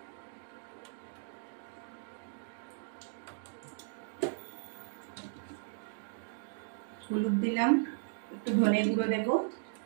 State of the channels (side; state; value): left; silent; digital silence